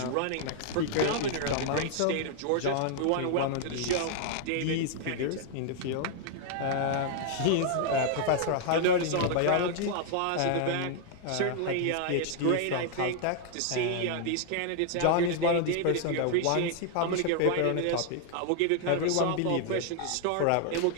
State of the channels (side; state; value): both; different; correlation 0.00